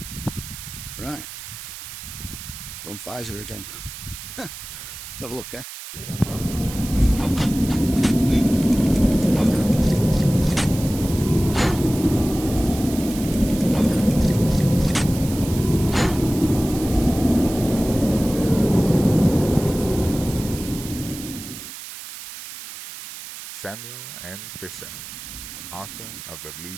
Right, we're on Pfizer again. Let's have a look, eh? Samuel N. Fisher, author of the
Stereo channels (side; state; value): right; noise; hiss, 12 dB below the sound